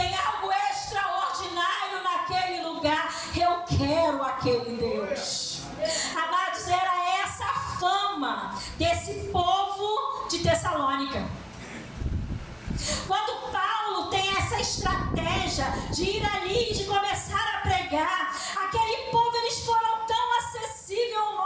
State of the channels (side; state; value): both; identical; correlation 1.00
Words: algo extraordinário naquele lugar. Eu quero aquele Deus. Amados, era essa a fama desse povo de Tessalônica. Quando Paulo tem essa estratégia de ir ali e de começar a pregar, aquele povo, eles foram tão acessíveis ao